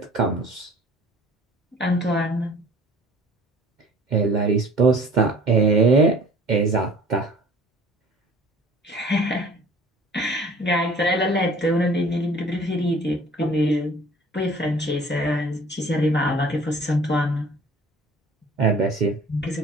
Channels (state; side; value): normal; both; correlation 0.49